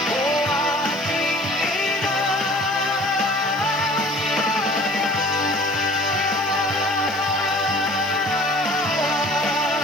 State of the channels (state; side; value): noise; left; hiss, 24 dB below the sound